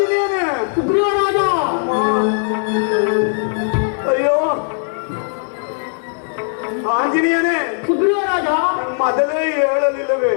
ಸುಗ್ರೀವರಾಜ. ಅಯ್ಯೋ ಆಂಜನೇಯನೇ ಸುಗ್ರೀವರಾಜ, ಮೊದಲೇ ಹೇಳಲಿಲ್ಲವೇ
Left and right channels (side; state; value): right; silent; 59 dB below the other